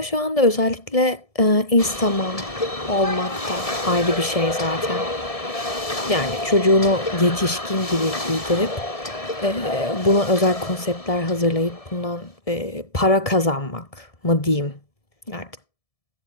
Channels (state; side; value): late; right; 1.7 ms